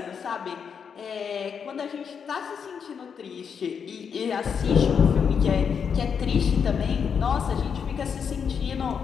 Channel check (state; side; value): quieter; right; 6.8 dB